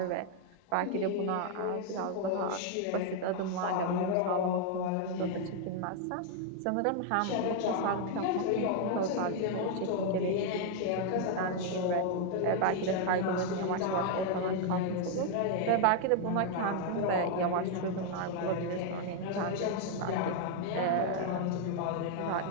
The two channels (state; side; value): different; both; correlation 0.00